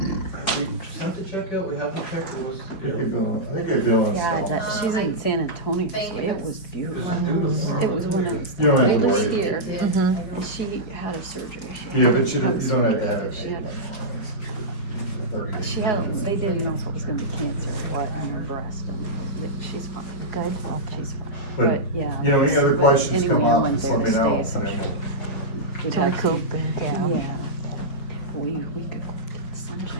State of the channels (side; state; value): right; late; 4.7 ms